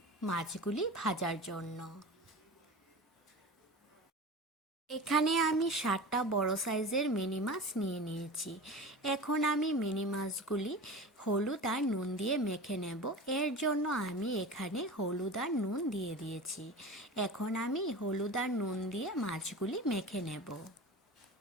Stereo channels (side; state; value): both; normal; correlation 0.32